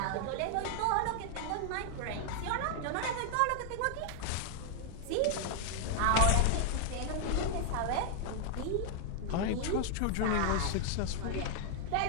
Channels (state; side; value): different; both; correlation -0.01